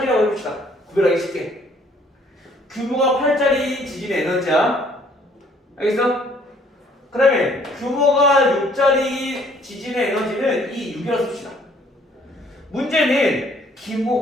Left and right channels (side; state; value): both; normal; correlation 0.61